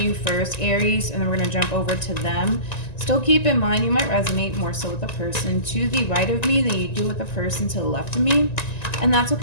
first, Aries, and then we're going to jump over to them. Still keep in mind you might resonate more so with the person to the right of me than you do with the person to the left of me. And that's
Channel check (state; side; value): late; right; 1.9 ms